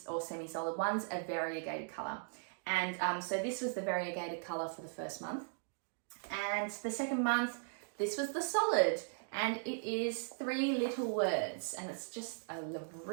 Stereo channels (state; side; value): silent; left; digital silence